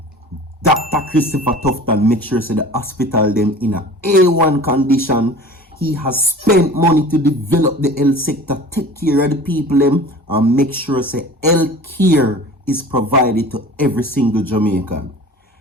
Dr. Christopher Tufton make sure the hospital them in a A1 condition. He has spent money to develop the health sector, take care of the people them, and make sure health care is provided to every single Jamaican.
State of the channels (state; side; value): normal; both; correlation 0.41